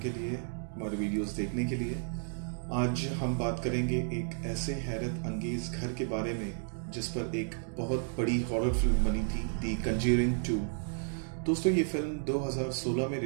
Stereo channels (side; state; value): left; silent; 56 dB below the other